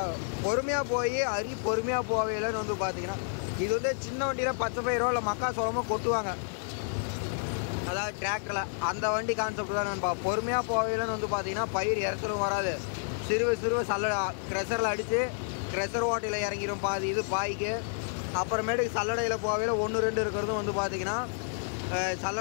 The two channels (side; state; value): right; silent; digital silence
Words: பொறுமையாக போய் அரி பொறுமையாக போவையிலன்னு வந்து பார்த்தீங்கன்னா இது வந்து சின்ன வண்டியில் பச்சை பயிரோ இல்லை மக்கா சோளமோ கொட்டுவாங்க, அதாவது டிராக்டரில். அந்த வண்டி கான்செப்ட் தான் நண்பா. பொறுமையாக போவையிலன்னு வந்து பார்த்தீங்கன்னா பயிர் இறச்சலும் வராது. சிறுவை க்ரெஷரில் அடித்து க்ரெஷர் ஓட்டையில் இறங்கிடும் பாதி இது பாய்க்கு. அப்புறமேட்டுக்கு சல்லடையில் போவையில் 1-2 இருக்கிறதும் வந்து பார்த்தீங்கன்னா